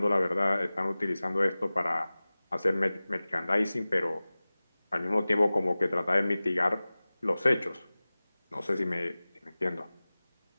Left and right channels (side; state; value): both; inverted; correlation -0.98